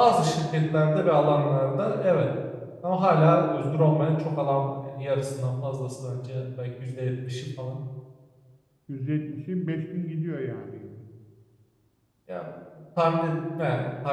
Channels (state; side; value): identical; both; correlation 1.00